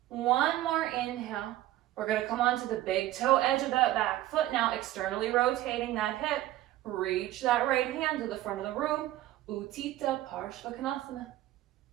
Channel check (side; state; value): left; quieter; 14.8 dB